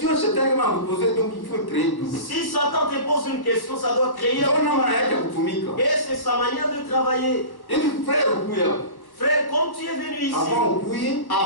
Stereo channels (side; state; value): right; late; 1.1 ms